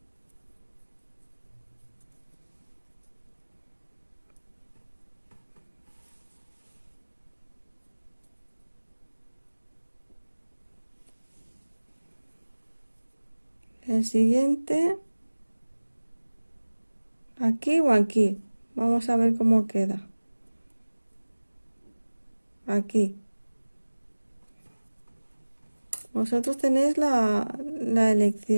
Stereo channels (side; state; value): both; inverted; correlation -1.00